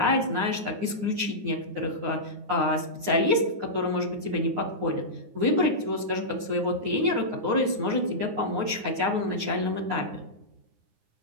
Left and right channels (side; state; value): left; late; 9.6 ms